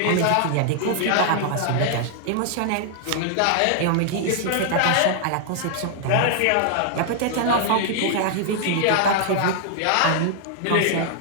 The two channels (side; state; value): both; different; correlation -0.01